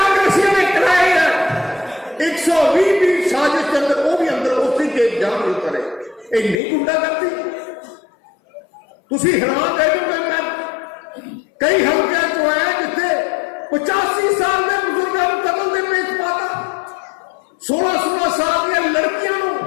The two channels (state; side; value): drops out; right; at 6.6 s